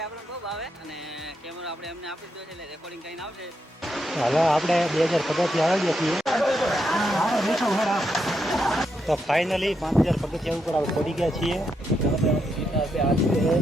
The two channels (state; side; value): normal; both; correlation 0.81